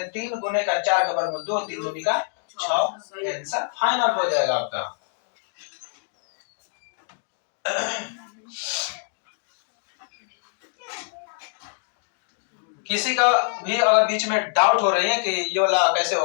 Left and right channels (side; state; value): right; silent; digital silence